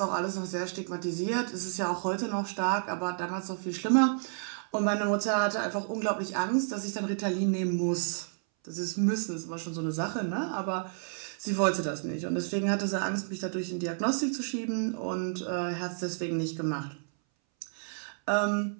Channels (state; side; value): silent; left; 57 dB below the other